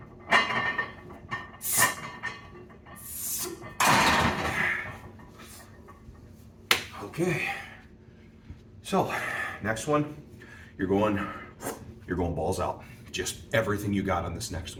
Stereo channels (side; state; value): both; identical; correlation 1.00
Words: Okay, so next one, you're going balls out. Just everything you got on this next